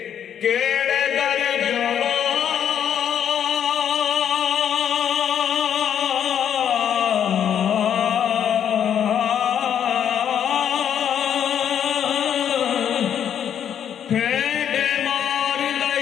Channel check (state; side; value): quieter; right; 9.1 dB